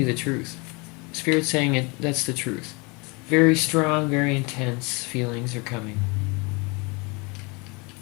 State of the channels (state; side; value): quieter; right; 28.8 dB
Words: the truth. Spirit's saying it. That's the truth. Very strong, very intense feelings are coming.